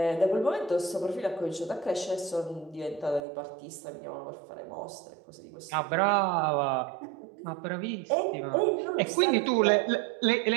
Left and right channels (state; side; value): drops out; left; at 3.2 s